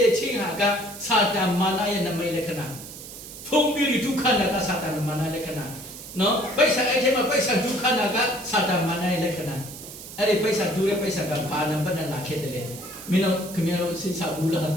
ေချင်းဟာကစာတန်မာနရဲ့နမိတ်လက္ခဏာဖုံးပြီးဒုက္ခနာကစာတန်မာနလက္ခဏာနော်ပိဿာအဲ့ထဲမှာပိဿာဒုက္ခနာကစာတန်မာနရဲ့လက္ခဏာအဲ့ဒီပိဿာဒူရဲ့ပိဿာကဘာနံပါတ်နဲ့လာခဲ့တယ်လေမင်းတို့ခင်ဗျားတို့စဉ်းစားဘူးလားဟမ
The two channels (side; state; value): right; noise; hiss, 13 dB below the sound